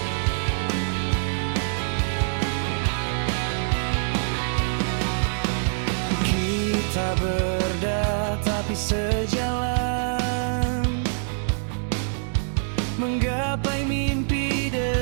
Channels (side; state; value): left; silent; digital silence